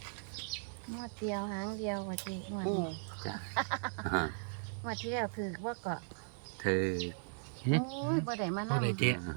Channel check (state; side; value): silent; left; 53 dB below the other